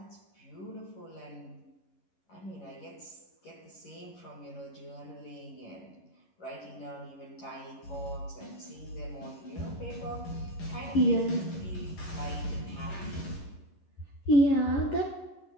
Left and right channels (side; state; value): right; late; 11 ms